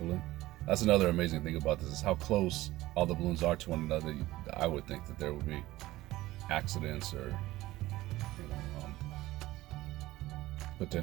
That's another amazing thing about this, is how close all the balloons are to one another. I would think that there would be accidents or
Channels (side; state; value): left; quieter; 17.3 dB